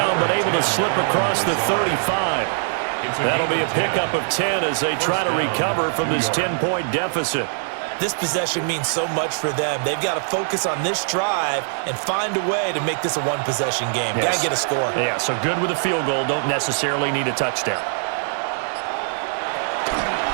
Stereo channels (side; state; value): left; silent; 64 dB below the other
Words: but able to slip across the 35. That'll be a pickup of 10 as they try to recover from this 10-point deficit. This possession means so much for them. They've got to focus on this drive and find a way to make this a one-possession game. Yes. Got to get a score. Yeah, so good with a field goal. Don't necessarily need a touchdown.